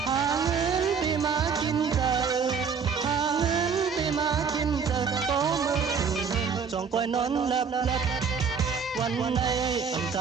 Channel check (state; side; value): quieter; left; 6.1 dB